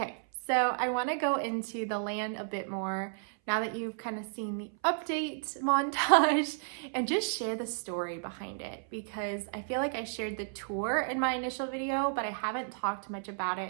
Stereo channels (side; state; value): left; silent; 56 dB below the other